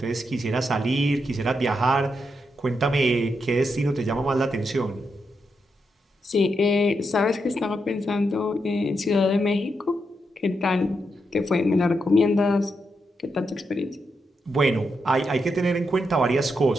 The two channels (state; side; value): normal; both; correlation 0.83